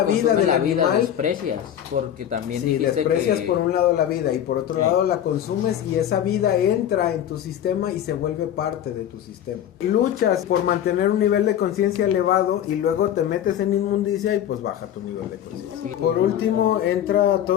vida consume del la vida, animal, desprecias, porque también si dijiste desprecias que... por un lado la vida y por otro Sí. lado la consumes y esa vida entra en tu sistema y se vuelve parte de tu sistema. Luchas por mantener un nivel de conciencia elevado y luego te metes en inmundicia y pues baja tu nivel de conciencia. Por último entra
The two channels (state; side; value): quieter; right; 10.5 dB